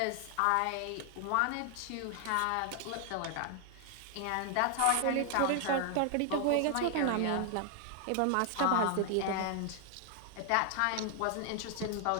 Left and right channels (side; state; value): both; different; correlation 0.00